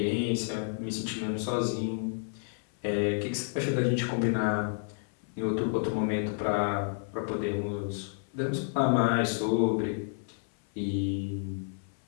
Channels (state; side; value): silent; right; 57 dB below the other